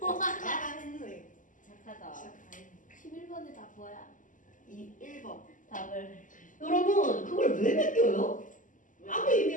와. 했네. 착하다. 11번에 다 뭐야? 1번. 답을. 여러분 그걸 왜 맡겨요? 아무 의미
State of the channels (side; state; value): right; late; 0.38 ms